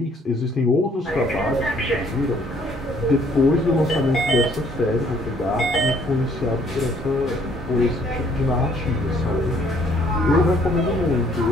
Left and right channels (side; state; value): both; normal; correlation 0.63